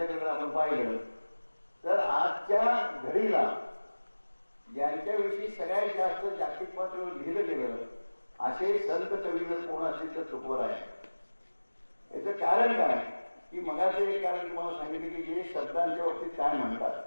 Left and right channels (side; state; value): both; inverted; correlation -1.00